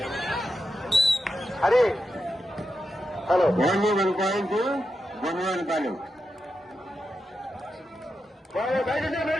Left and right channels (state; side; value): normal; both; correlation 0.88